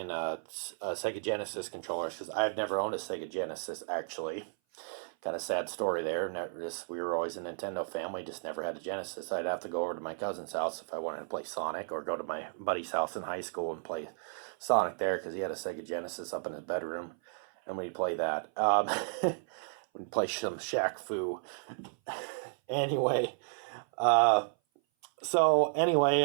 Sega Genesis controllers because I've never owned a Sega Genesis actually. Kind of sad story there. We were always a Nintendo family, just never had a Genesis. I'd have to go over to my cousin's house if I wanted to play Sonic, or go to my buddy's house in high school and play Sonic there because he had a Sega Genesis up in his bedroom, and we'd play that. We'd play some Shaq Fu. Anyway,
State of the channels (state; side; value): silent; left; 55 dB below the other